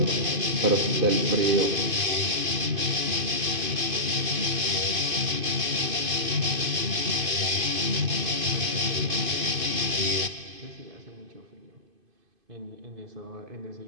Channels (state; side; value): late; left; 2.5 ms